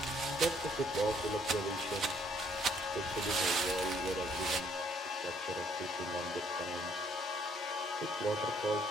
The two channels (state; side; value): normal; both; correlation 0.65